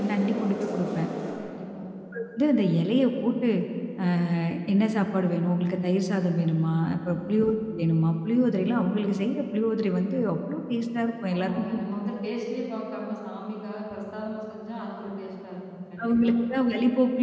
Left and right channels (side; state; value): both; identical; correlation 1.00